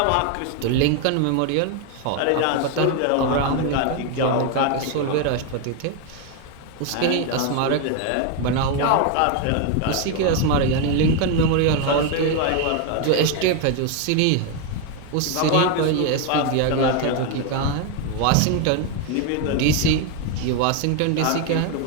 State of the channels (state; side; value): different; both; correlation 0.01